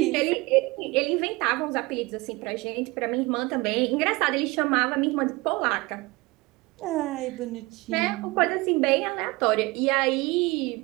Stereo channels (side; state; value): left; quieter; 23.1 dB